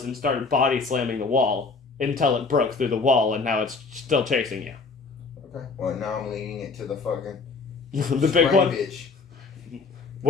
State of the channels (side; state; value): right; quieter; 4.4 dB